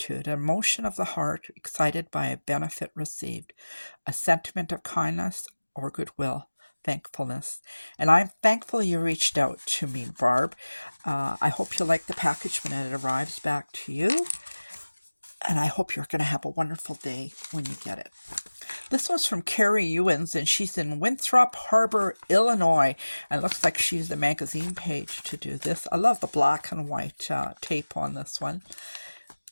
an emotion of the heart, excited by a benefit received, a sentiment of kindness or goodwill. Thankfulness. And I'm thankful you reached out to me, Barb. I hope you like the package when it arrives back to you. And I hope you're going to have a wonderful day when you get it. This one's from Carrie Ewins, and she's in Winthrop Harbor, Illinois. And it looks like she used the magazine page to do this. I love the black and white tape on this one.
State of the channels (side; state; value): both; inverted; correlation -1.00